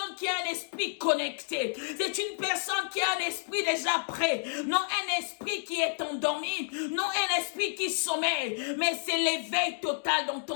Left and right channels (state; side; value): silent; right; digital silence